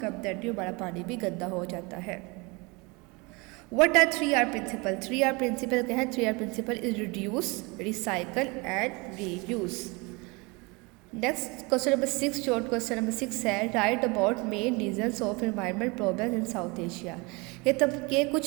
dirty, हमारा पानी भी गंदा हो जाता है। What are 3R principle? 3R principle क्या है? 3R principle is reduce, recycle and reuse. Next question number 6, short question number 6 है write about main reasons of environment problem in South Asia. ये तब के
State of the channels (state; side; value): quieter; left; 27.1 dB